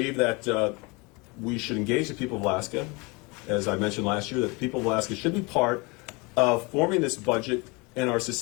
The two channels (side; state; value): right; quieter; 27.7 dB